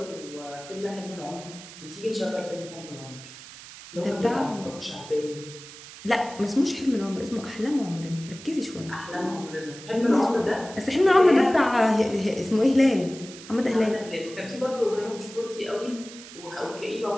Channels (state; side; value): noise; right; hiss, 16 dB below the sound